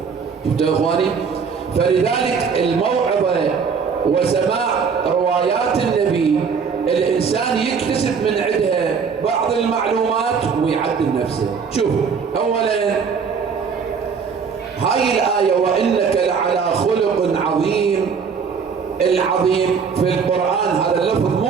شفتوا اخواني؟ فلذلك الموعظه وسماع روايات النبي الإنسان يكتسب من عندها بعض المعلومات ويعدل نفسه. شوف، أولا هاي الآية وإنك لعلى خلق عظيم، العظيم في القرآن هذا اللفظ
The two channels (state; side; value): quieter; left; 6.0 dB